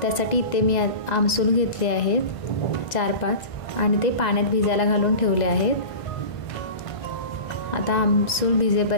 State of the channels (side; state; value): right; late; 1.9 ms